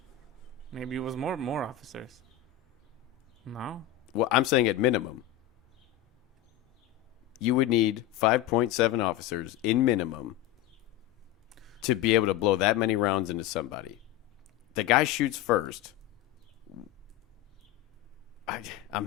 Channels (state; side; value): quieter; right; 12.0 dB